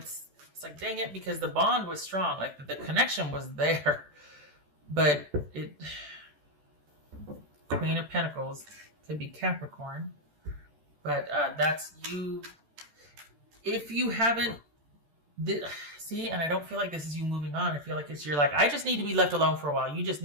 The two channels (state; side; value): late; left; 14 ms